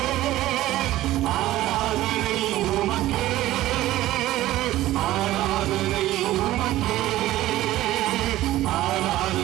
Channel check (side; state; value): left; quieter; 15.4 dB